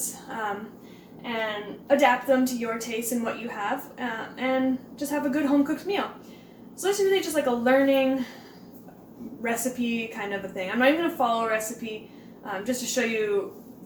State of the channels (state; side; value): identical; both; correlation 1.00